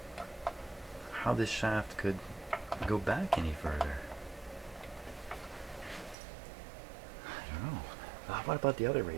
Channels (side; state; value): left; drops out; at 6.2 s